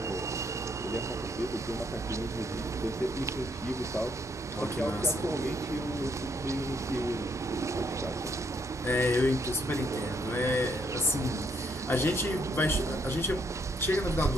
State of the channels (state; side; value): normal; both; correlation 0.72